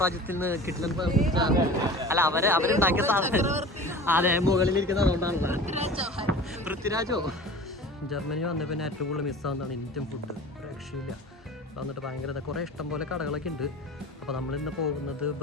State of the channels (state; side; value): normal; both; correlation 0.39